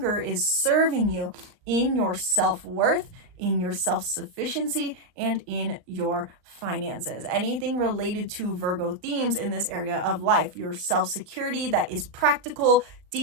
is serving you in your self-worth, in your self-sufficiency, and in your finances. Anything related to Virgo themes in this area of life, your self-security that is practical,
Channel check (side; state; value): left; late; 39 ms